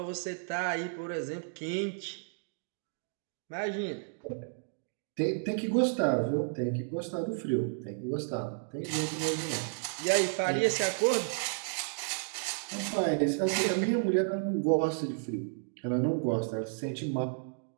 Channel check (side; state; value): left; silent; digital silence